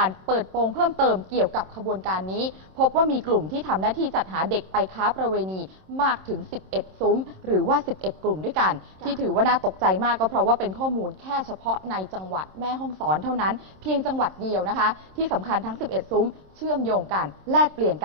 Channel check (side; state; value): left; late; 26 ms